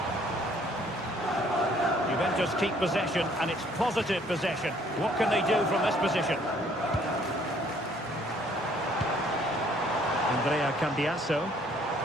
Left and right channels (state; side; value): normal; both; correlation 0.61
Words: Juventus keep possession, and it's positive possession. What can they do from this position? Andrea Cambiasso.